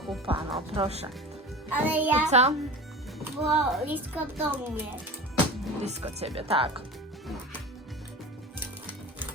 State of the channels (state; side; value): normal; both; correlation 0.34